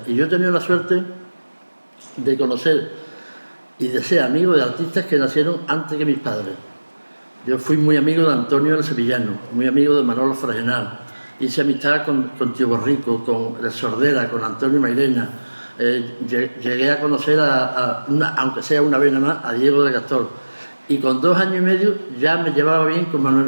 Y yo he tenido la suerte de conocer y de ser amigo de artistas que nacieron antes que mis padres. Yo fui muy amigo de Antonio el Sevillano, muy amigo de Manolo Fragenal. Hice amistad con Tío Borrico, con el Sordera, con Antonio Mairena. Llegué a conocer, aunque sea una vez nada más, a Diego de Gastor. Y con 2 años y medio ya me llevaba bien con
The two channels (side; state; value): both; inverted; correlation -1.00